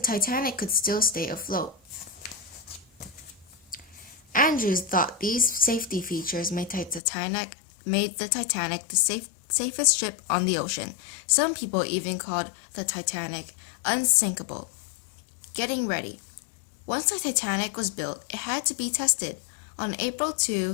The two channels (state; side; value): drops out; right; at 7.0 s